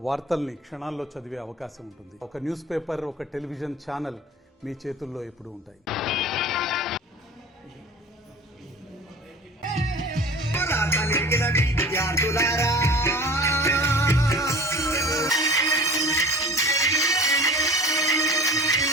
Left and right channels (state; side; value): normal; both; correlation 0.41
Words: వార్తల్ని క్షణాల్లో చదివే అవకాశం ఉంటుంది. ఒక న్యూస్ పేపర్, ఒక టెలివిజన్ ఛానల్ మీ చేతుల్లో ఎప్పుడూ ఉంటాయి.